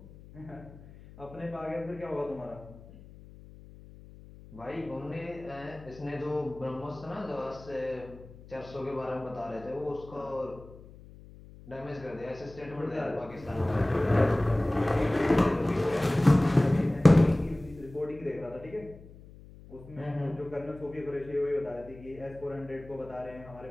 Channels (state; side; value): noise; left; hum, 19 dB below the sound